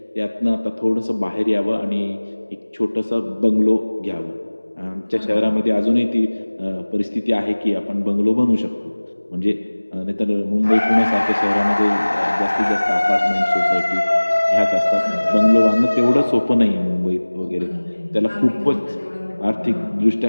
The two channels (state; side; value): inverted; both; correlation -1.00